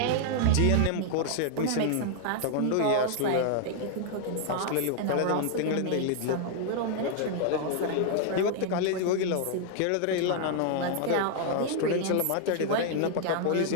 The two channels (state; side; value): different; both; correlation 0.00